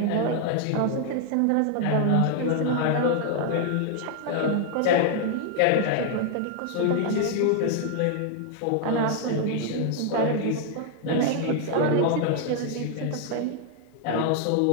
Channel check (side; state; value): both; different; correlation 0.00